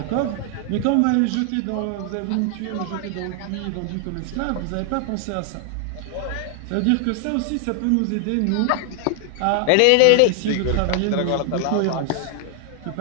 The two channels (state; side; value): different; both; correlation 0.00